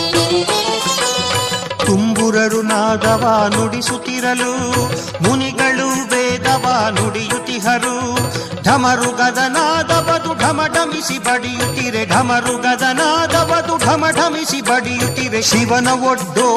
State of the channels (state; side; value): identical; both; correlation 1.00